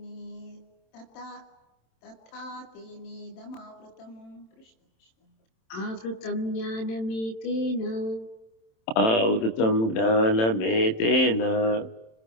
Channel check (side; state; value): right; late; 27 ms